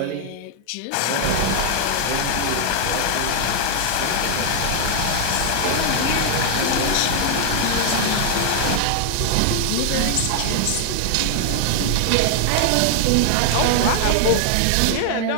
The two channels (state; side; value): different; both; correlation 0.00